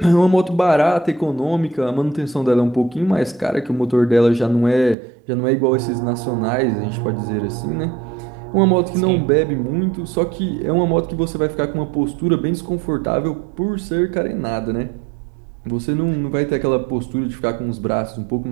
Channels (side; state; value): left; drops out; at 5.0 s